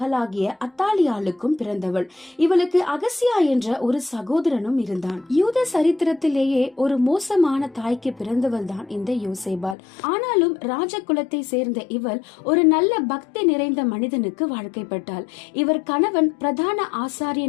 அத்தாலியாளுக்கும் பிறந்தவள். இவளுக்கு அகசியா என்ற ஒரு சகோதரனும் இருந்தான். யூத சரித்திரத்திலேயே ஒரு மோசமான தாய்க்கு பிறந்தவள் தான் இந்த யோசேபால். ஆனாலும் ராஜகுலத்தை சேர்ந்த இவள் ஒரு நல்ல பக்தி நிறைந்த மனிதனுக்கு வாழ்க்கைப்பட்டாள். இவர் கணவன் பிரதான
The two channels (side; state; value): right; drops out; at 9.8 s